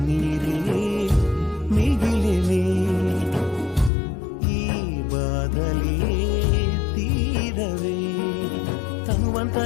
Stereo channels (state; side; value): drops out; right; at 3.9 s